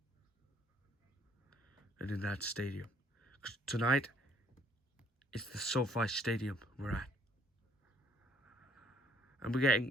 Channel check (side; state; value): both; normal; correlation 0.63